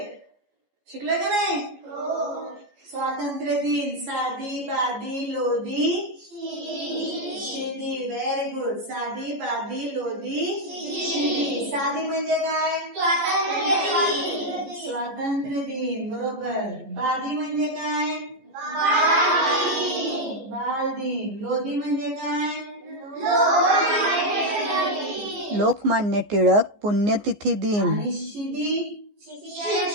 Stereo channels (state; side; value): late; left; 15 ms